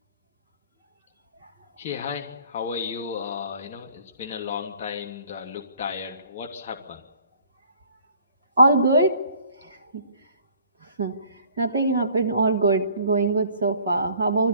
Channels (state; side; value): inverted; both; correlation -0.55